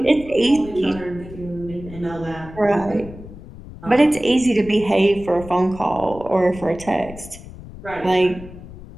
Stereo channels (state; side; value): noise; left; rumble, 16 dB below the sound